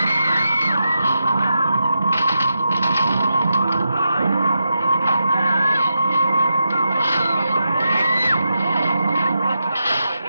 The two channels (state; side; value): inverted; both; correlation -0.86